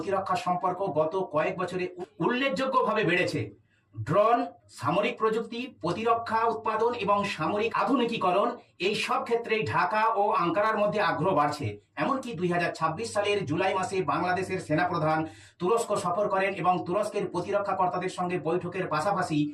সম্পর্ক গত কয়েক বছরে উল্লেখযোগ্যভাবে বেড়েছে। ড্রোন, সামরিক প্রযুক্তি, প্রতিরক্ষা উৎপাদন এবং সামরিক আধুনিকীকরণ, এই সব ক্ষেত্রেই ঢাকা ও আঙ্কারার মধ্যে আগ্রহ বাড়ছে। এমনকি 2026 সালের জুলাই মাসে বাংলাদেশের সেনাপ্রধান তুরস্ক সফর করেন এবং তুরস্কের প্রতিরক্ষা কর্তাদের সঙ্গে বৈঠকের পাশাপাশি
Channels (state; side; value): identical; both; correlation 1.00